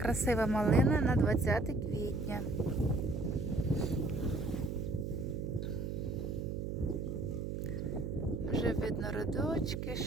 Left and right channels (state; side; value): noise; right; hum, 3 dB below the sound